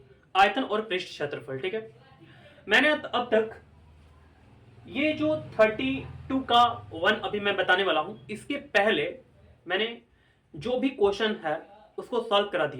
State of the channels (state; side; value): identical; both; correlation 1.00